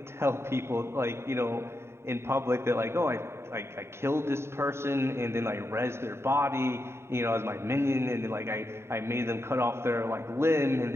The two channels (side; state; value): left; late; 0.12 ms